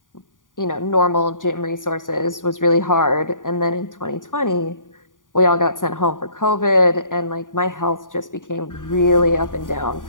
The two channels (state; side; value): late; right; 0.88 ms